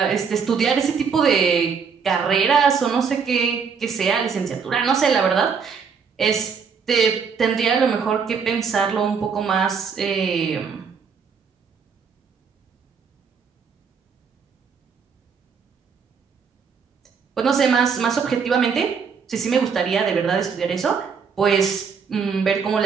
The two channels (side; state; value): left; quieter; 6.0 dB